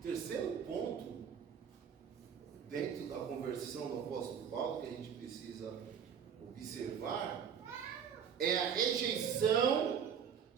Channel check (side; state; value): left; quieter; 7.7 dB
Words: Terceiro ponto, dentro da conversão do apóstolo Paulo, que a gente precisa observar, é a rejeição